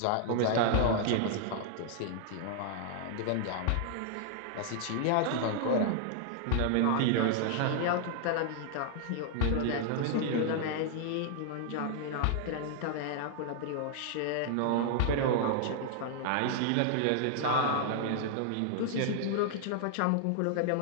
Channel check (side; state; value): both; different; correlation -0.01